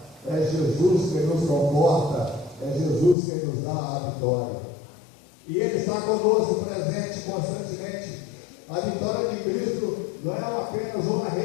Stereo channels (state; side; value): drops out; right; at 3.2 s